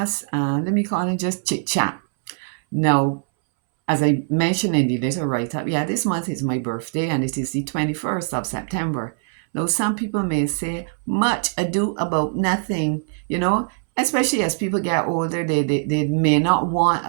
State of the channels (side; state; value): left; silent; 64 dB below the other